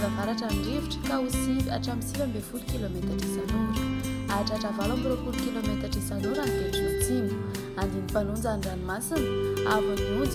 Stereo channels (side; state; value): both; identical; correlation 1.00